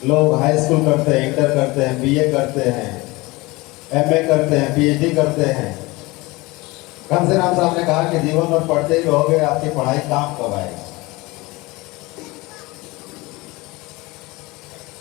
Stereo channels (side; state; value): right; quieter; 22.7 dB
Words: लोग हाई स्कूल करते हैं, इंटर करते हैं, बीए करते हैं, एमए करते हैं, पीएचडी करते हैं। कांसीराम साहब ने कहा कि जीवन में पढ़ते ही रहोगे, आपकी पढ़ाई काम कब आएगी?